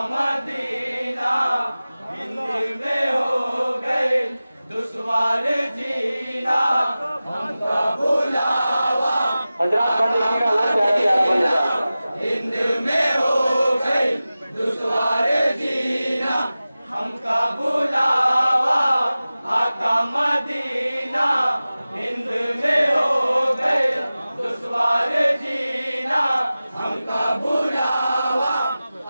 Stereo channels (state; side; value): inverted; both; correlation -0.96